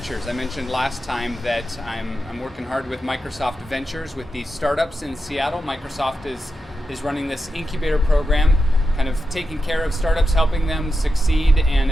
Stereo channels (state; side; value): normal; both; correlation 0.88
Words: I mentioned last time that I'm working hard with Microsoft Ventures with these startups in Seattle. Microsoft is running this incubator program, kind of taking care of startups, helping them succeed, and